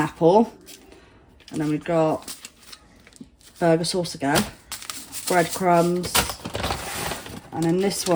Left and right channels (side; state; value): both; identical; correlation 1.00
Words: apple. And then we've got burger sauce again, breadcrumbs. And in this